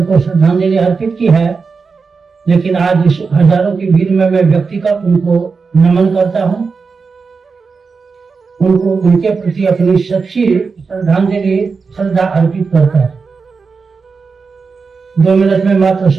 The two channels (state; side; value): quieter; left; 4.9 dB